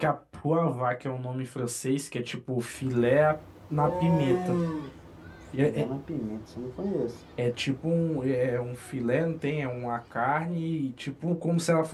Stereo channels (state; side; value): identical; both; correlation 1.00